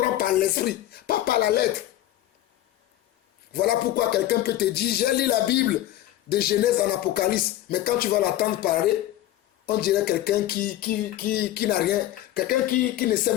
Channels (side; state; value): right; quieter; 13.8 dB